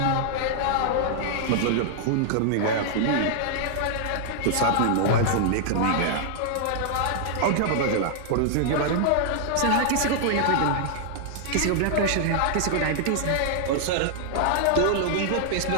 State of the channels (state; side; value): different; both; correlation -0.01